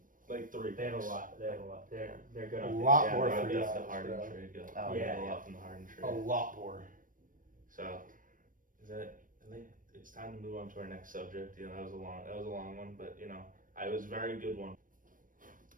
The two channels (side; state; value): left; late; 0.39 ms